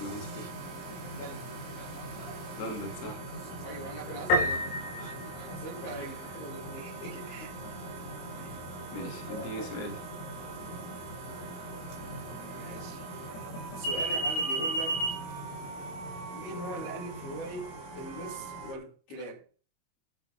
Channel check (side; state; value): right; late; 23 ms